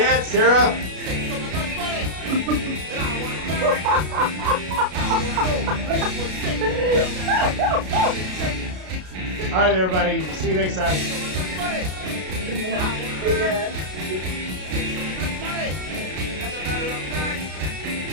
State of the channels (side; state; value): left; late; 33 ms